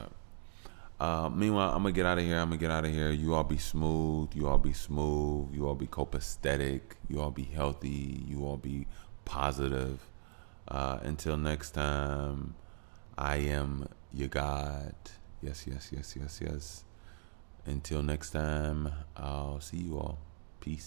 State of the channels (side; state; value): left; silent; digital silence